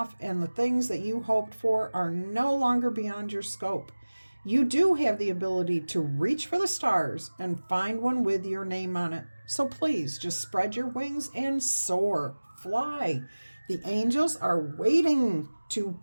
and the things that you hoped for are no longer beyond your scope. You do have the ability to reach for the stars and find one with your name on it. So please just spread your wings and soar, fly. The angels are waiting to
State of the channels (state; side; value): inverted; both; correlation -1.00